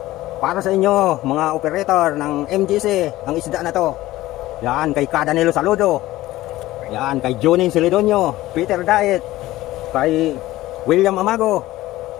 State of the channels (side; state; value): right; quieter; 16.6 dB